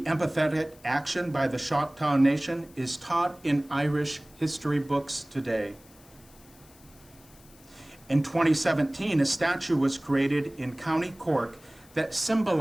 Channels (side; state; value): left; noise; hiss, 26 dB below the sound